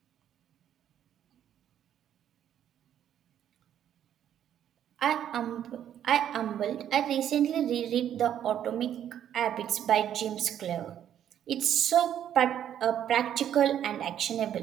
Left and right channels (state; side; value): quieter; left; 10.2 dB